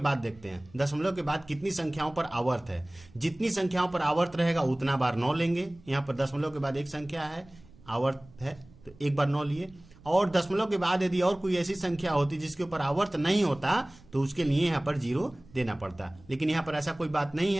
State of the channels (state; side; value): noise; right; rumble, 24 dB below the sound